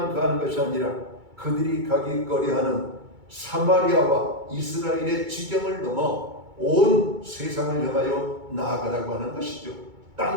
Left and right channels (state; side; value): late; left; 2.2 ms